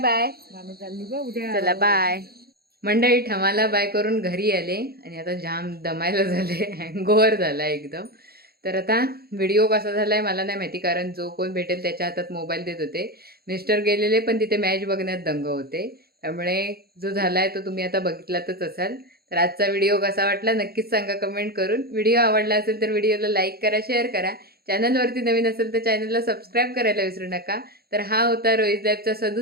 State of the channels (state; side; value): late; left; 0.45 ms